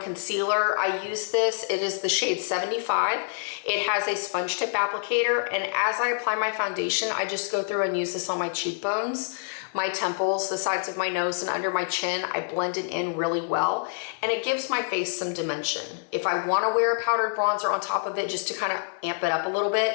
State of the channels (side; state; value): right; silent; 60 dB below the other